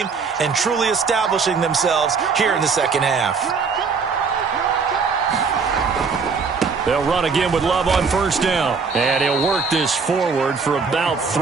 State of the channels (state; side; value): quieter; left; 5.2 dB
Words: and truly establishing themselves here in the second half. They'll run again with Love on first down. And he'll work this forward for about